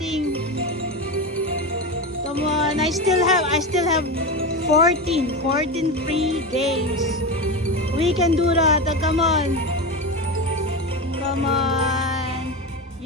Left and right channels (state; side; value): normal; both; correlation 0.20